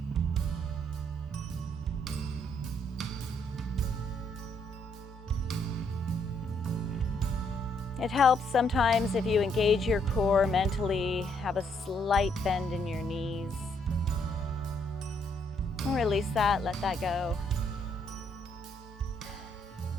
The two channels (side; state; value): both; normal; correlation 0.71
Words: It helps sometimes if you engage your core mentally, have a slight bend in your knees. Release that, let that go.